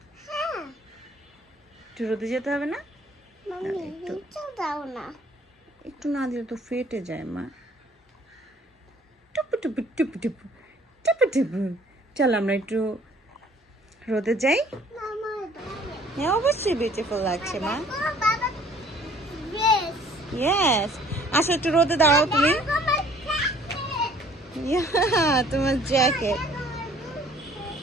একটু রোদে যেতে হবে না? একটু না দিলে তো ফেটে যায় মা। টুপু টুপু টুপু টুপু টুপু টুপু। চল আমরা একটু রোদে যাই। হ্যাঁ, অবশ্যই বিউটিফুল লাগছে মা। ইয়েস, আসো একটু রোদে দাঁড়াও তুমি। তোমার জ্যাকেট।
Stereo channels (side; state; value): both; normal; correlation 0.56